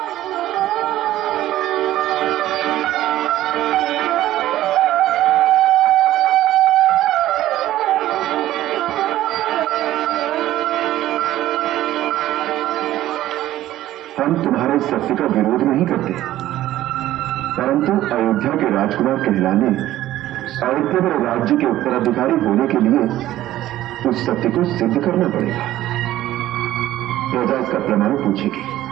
हम तुम्हारे सत्य का विरोध नहीं करते, परंतु अयोध्या के राजकुमार कहलाने और केवल राज्य के उत्तराधिकारी होने के लिए उस सत्य को सिद्ध करना पड़ेगा। प्रजा इसका प्रमाण पूछेगी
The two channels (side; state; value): left; quieter; 14.2 dB